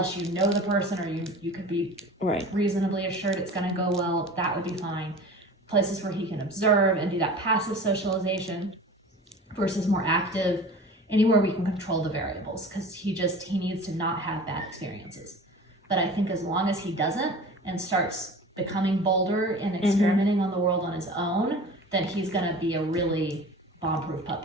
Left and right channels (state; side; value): normal; both; correlation 0.39